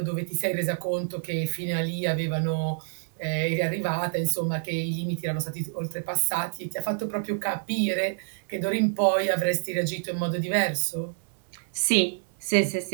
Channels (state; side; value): silent; left; 60 dB below the other